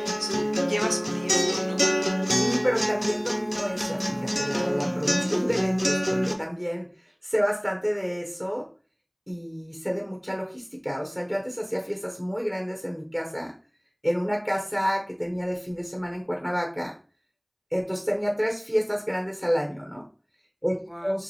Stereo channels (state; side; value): identical; both; correlation 1.00